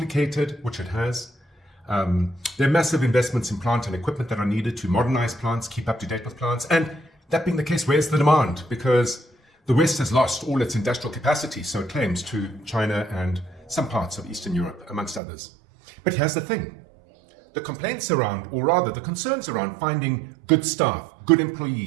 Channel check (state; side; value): drops out; left; at 15.2 s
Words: which it has. There are massive investments in plant and equipment that are needed to modernize plants, keep up to date with plants. And that being the case, where's the demand? Because the West has lost all its industrial capacity, so it claims, to China and some parts of Eastern Europe, amongst others. But here's the thing. The complaints around, or rather the concerns around finding good staff, good